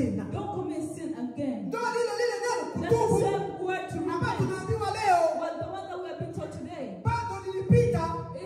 Don't commit sin again. Ndio lile neno kutubu. That's the same word to repent. Tunaambiwa leo. Well, the one that we have been taught today. Bado nilipita.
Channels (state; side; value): identical; both; correlation 1.00